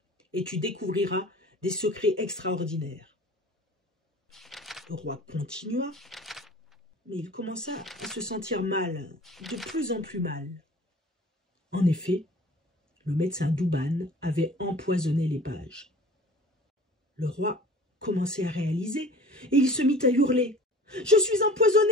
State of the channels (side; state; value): both; normal; correlation 0.45